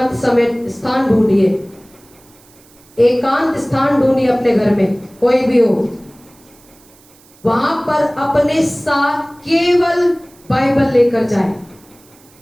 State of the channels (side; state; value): right; noise; hiss, 28 dB below the sound